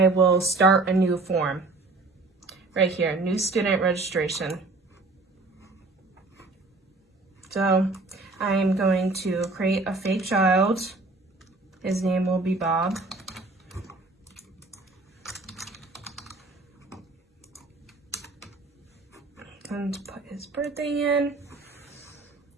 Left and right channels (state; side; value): quieter; left; 3.4 dB